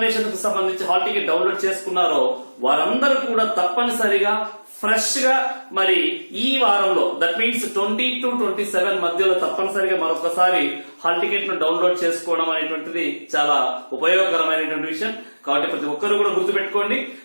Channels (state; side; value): inverted; both; correlation -1.00